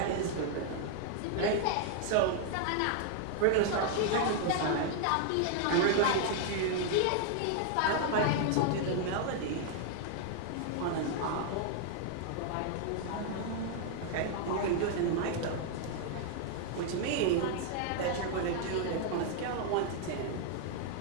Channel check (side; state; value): both; different; correlation 0.00